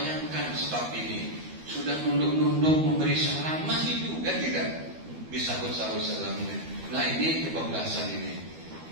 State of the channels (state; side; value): late; left; 12 ms